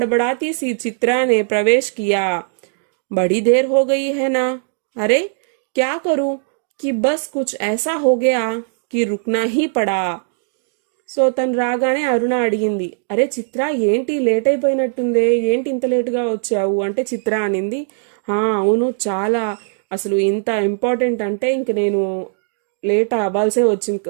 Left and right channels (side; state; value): left; silent; digital silence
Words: सी चित्रा ने प्रवेश किया. बड़ी देर हो गई है ना. अरे क्या करूं कि बस कुछ ऐसा हो गया कि रुकना ही पड़ा. సో తను రాగానే అరుణ అడిగింది, అరే చిత్ర ఏంటి లేట్ అయిపోయినట్టుందే, ఏంటి ఇంత లేటుగా వచ్చావు అంటే చిత్ర అనింది, అవును చాలా, అసలు ఇంత ఇంపార్టెంట్ అంటే ఇంక నేను లేట్ అవ్వాల్సే వచ్చింది,